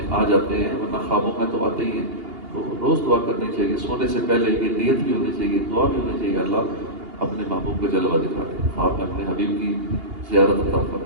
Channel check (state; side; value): late; left; 2.8 ms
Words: آ جاتے ہیں، ورنہ خوابوں میں تو آتے ہی ہیں۔ تو روز دعا کرنی چاہیے، سونے سے پہلے یہ نیت بھی ہونی چاہیے، دعا بھی ہونی چاہیے، اللہ اپنے محبوب کا جلوہ دکھا دے، خواب میں اپنے حبیب کی زیارت عطا